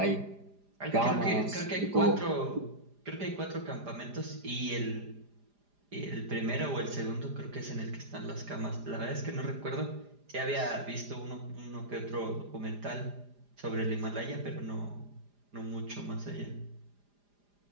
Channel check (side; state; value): left; late; 4.9 ms